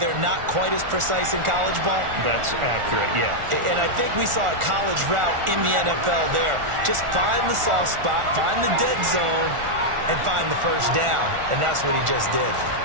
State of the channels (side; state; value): left; late; 1.4 ms